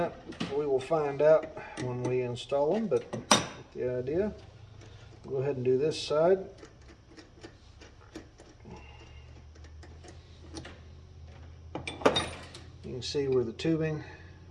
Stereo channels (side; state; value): both; identical; correlation 1.00